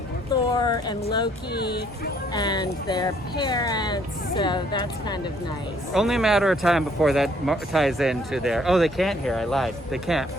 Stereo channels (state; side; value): normal; both; correlation 0.64